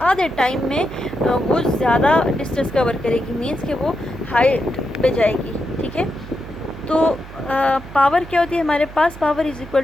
आधे टाइम में वो ज़्यादा डिस्टेंस कवर करेगी, मीन्स कि वो हाइट पे जाएगी, ठीक है। तो पावर क्या होती है हमारे पास, पावर इज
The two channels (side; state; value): right; noise; hum, 15 dB below the sound